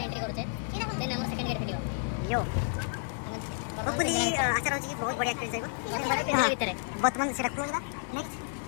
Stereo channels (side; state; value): right; silent; digital silence